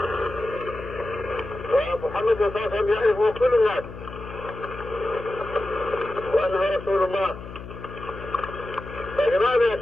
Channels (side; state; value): left; noise; hum, 12 dB below the sound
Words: ومحمد صلى الله عليه وسلم يعرفه كل الناس، وأنه رسول الله. فلماذا